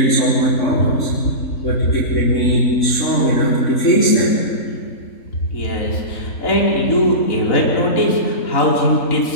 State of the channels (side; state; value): right; late; 3.6 ms